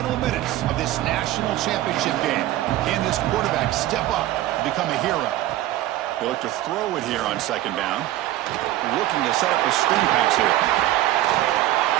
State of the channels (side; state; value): left; quieter; 15.0 dB